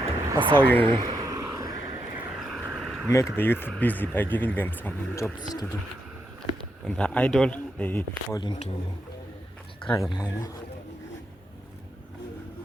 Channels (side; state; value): both; normal; correlation 0.82